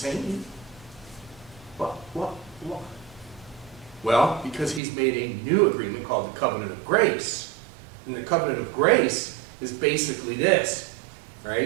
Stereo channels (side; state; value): left; drops out; at 4.8 s